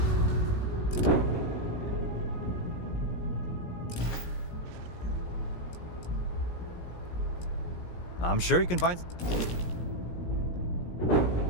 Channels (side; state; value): right; late; 17 ms